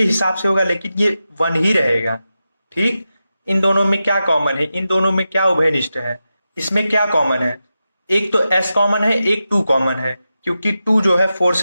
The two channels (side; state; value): both; inverted; correlation -0.91